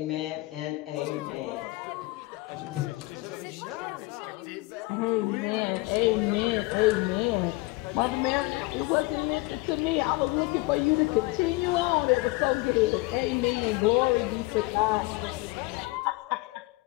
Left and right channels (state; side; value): quieter; right; 22.4 dB